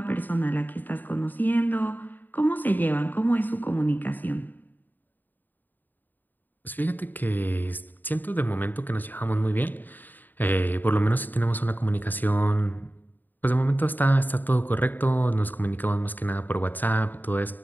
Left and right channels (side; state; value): right; late; 0.088 ms